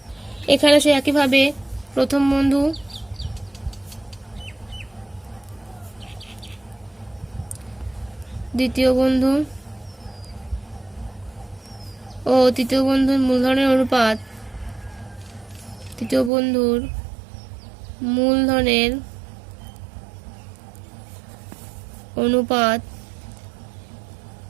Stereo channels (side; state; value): left; drops out; at 16.3 s